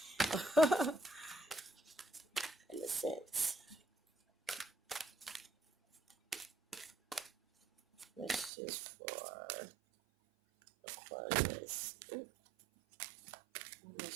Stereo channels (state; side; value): drops out; left; at 8.5 s